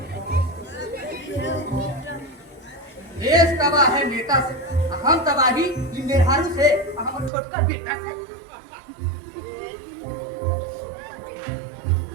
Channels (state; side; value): drops out; left; at 7.3 s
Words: देश तबाह है नेता से, हम तबाही मेहरारू से, हम छोटका बेटा से।